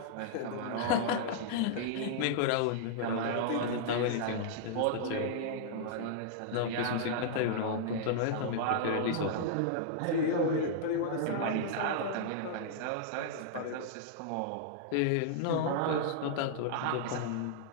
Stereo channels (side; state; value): both; different; correlation -0.01